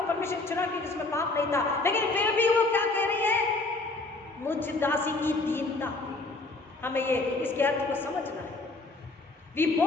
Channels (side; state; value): right; quieter; 3.2 dB